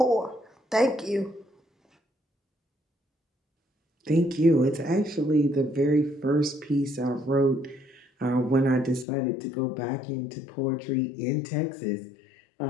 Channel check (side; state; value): right; drops out; at 9.1 s